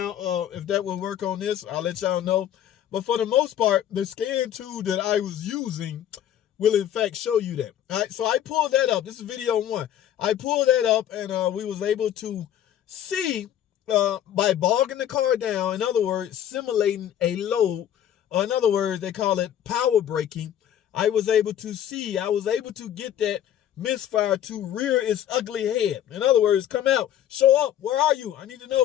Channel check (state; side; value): quieter; right; 10.8 dB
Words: if that will work on this. I'll let y'all know. But for the most part, the scan tool that I was using will in fact show you that. All right, so I pulled that up. This is video 1. I pulled that up, and we was able to see by bogging the car down, in other words, simulating a load. In other words, they call it power braking. I was able to get that misfire to rear its ugly head. In other words, come out, show up. Where are you? I need to